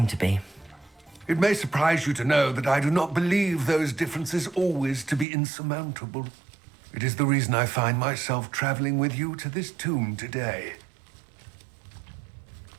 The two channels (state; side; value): drops out; left; at 5.2 s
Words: to be. It may surprise you to know that I do not believe those differences always to be insurmountable. It is the reason I find myself traveling with you to this tomb today.